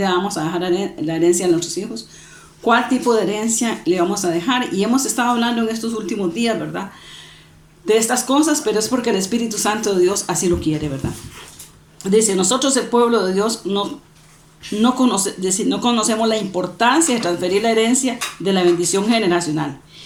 vamos a dejar la herencia a nuestros hijos? ¿Cuál tipo de herencia le vamos a dejar? Y hemos estado hablando en estos últimos días, ¿verdad? De estas cosas, pero es porque el Espíritu Santo de Dios así lo quiere, ¿verdad? Dice, nosotros el pueblo de Dios no conocemos la importancia de transferir la herencia de la bendición generacional.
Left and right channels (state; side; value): identical; both; correlation 1.00